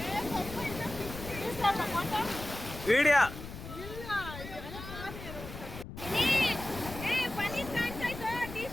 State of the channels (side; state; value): left; noise; rumble, 11 dB below the sound